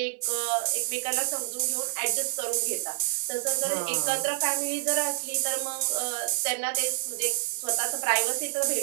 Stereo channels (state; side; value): silent; left; digital silence